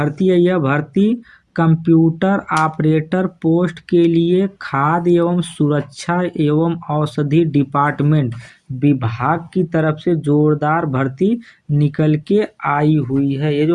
है, यह भर्ती कंप्यूटर ऑपरेटर पोस्ट के लिए खाद्य एवं सुरक्षा एवं औषधि डिपार्टमेंट विभाग की तरफ से जोरदार भर्ती निकल के आई हुई है। ये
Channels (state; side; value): identical; both; correlation 1.00